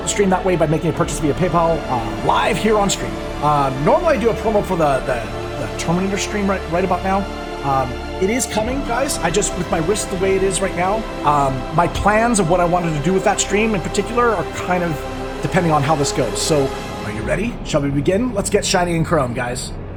the stream that way by making a purchase via PayPal live here on stream. Normally I do a promo for the Terminator stream right about now. It is coming, guys. I just, with my wrist the way it is right now, my plans of what I wanted to do with that stream in particular are kind of depending on how this goes. So, are you ready? Shall we begin? Let's get shiny and chrome, guys.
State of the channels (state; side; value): identical; both; correlation 1.00